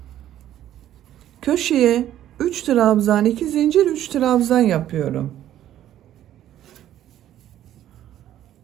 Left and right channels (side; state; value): left; quieter; 12.1 dB